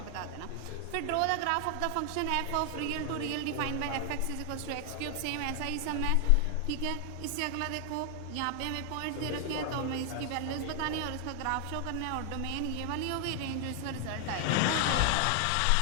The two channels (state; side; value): different; both; correlation 0.00